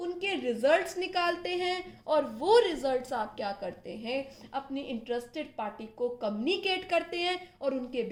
रिजल्ट्स निकालते हैं, और वो रिजल्ट्स आप क्या करते हैं, अपनी इंटरेस्टेड पार्टी को कम्युनिकेट करते हैं, और उनके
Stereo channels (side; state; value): both; identical; correlation 1.00